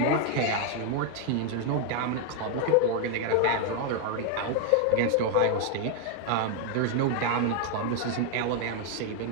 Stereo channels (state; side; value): different; both; correlation 0.00